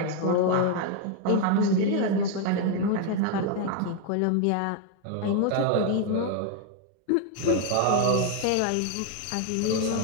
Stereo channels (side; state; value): both; different; correlation 0.01